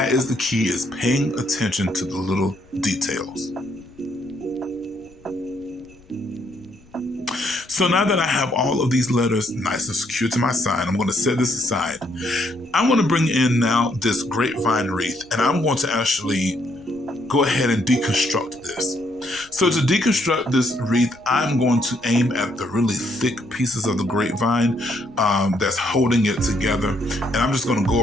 is the key, is paying attention to the little details. So now that I have all of these letters nice and secure to my sign, I'm going to set this aside. I'm going to bring in now this grapevine wreath, and I'm going to actually go ahead and deconstruct this. So to deconstruct this wreath, I'm going to aim at the really thick pieces of the grapevine that's holding it together. And I'm just going to go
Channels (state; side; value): noise; left; rumble, 28 dB below the sound